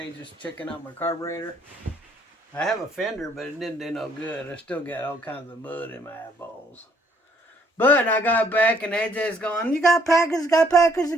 just checking out my carburetor. I have a fender, but it didn't do no good. I still got all kinds of mud in my eyeballs. But I got back and AJ's going, you got packages, you got packages, you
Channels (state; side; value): normal; both; correlation 0.65